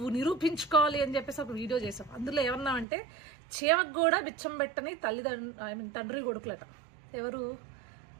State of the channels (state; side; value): drops out; left; at 2.9 s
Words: నిరూపించుకోవాలి అని చెప్పేసి ఒక వీడియో చేసాం. అందులో ఏమన్నామంటే చీమకు కూడా బిచ్చం పెట్టని తండ్రి కొడుకులట.